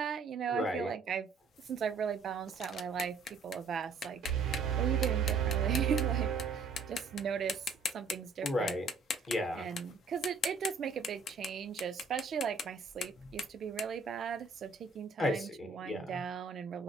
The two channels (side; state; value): left; quieter; 4.4 dB